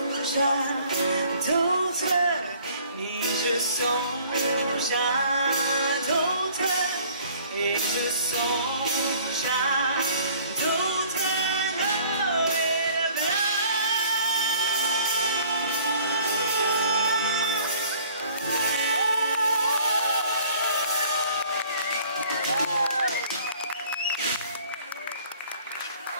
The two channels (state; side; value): inverted; both; correlation -0.54